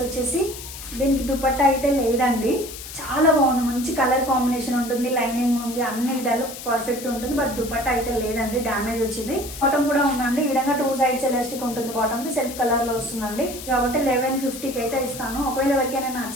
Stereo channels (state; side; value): noise; left; hiss, 12 dB below the sound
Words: వచ్చేసి దీనికి దుపట్టా అయితే లేదండి, చాలా బాగుంది, మంచి కలర్ కాంబినేషన్ ఉంటుంది, లైనింగ్ ఉంది, అన్ని విధాలు పర్ఫెక్ట్ ఉంటుంది. బట్ దుపట్టా అయితే లేదండి, డ్యామేజ్ వచ్చింది. బాటమ్ కూడా ఉందండి, ఈ విధంగా 2 సైడ్స్ ఎలాస్టిక్ ఉంటుంది. బాటమ్కి సెల్ఫ్ కలర్లో వస్తుందండి. కాబట్టి 1150కి అయితే ఇస్తాను. ఒకవేళ ఎవరికైనా